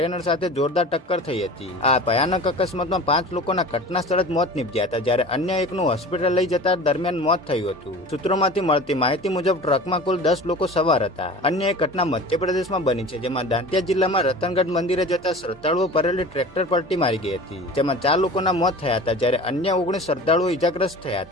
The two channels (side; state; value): both; normal; correlation 0.38